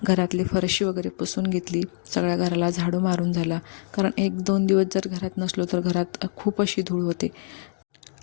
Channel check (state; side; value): silent; right; digital silence